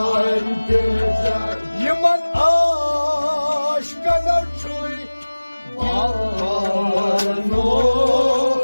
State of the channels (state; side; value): inverted; both; correlation -1.00